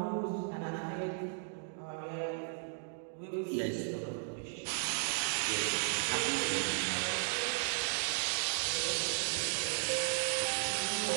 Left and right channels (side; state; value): left; silent; digital silence